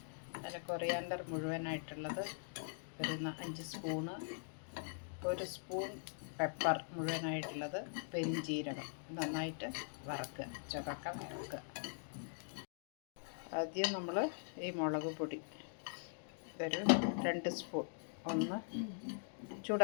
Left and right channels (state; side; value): silent; right; digital silence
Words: അതിൽ കൊറിയാണ്ടർ മുഴുവനായിട്ടുള്ളത് ഒരു 5 സ്പൂണ്, 1 സ്പൂൺ പെപ്പർ മുഴുവനായിട്ടുള്ളത്, പെരിഞ്ജീരകം നന്നായിട്ട് വറക്കുക, ചുവക്ക വറക്കുക. ആദ്യം നമ്മൾ ഈ മുളക് പൊടി ഇതൊരു 2 സ്പൂൺ ഒന്ന്